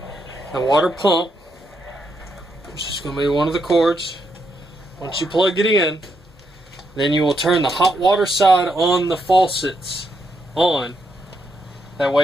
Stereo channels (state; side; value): normal; both; correlation 0.79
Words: the water pump, which is going to be one of the cords. Once you plug it in, then you will turn the hot water side on the faucets on. That